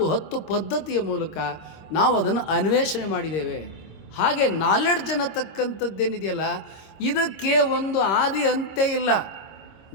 10 ಪದ್ಧತಿಯ ಮೂಲಕ ನಾವು ಅದನ್ನು ಅನ್ವೇಷಣೆ ಮಾಡಿದ್ದೇವೆ. ಹಾಗೆ ನಾಲೆಡ್ಜ್ ಅನ್ನತಕ್ಕಂಥದ್ದೇನಿದೆಯಲ್ಲ, ಇದಕ್ಕೆ ಒಂದು ಆದಿ ಅಂತ್ಯ ಇಲ್ಲ,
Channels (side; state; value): right; late; 26 ms